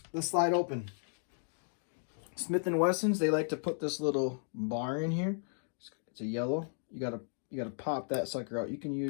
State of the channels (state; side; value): silent; right; 55 dB below the other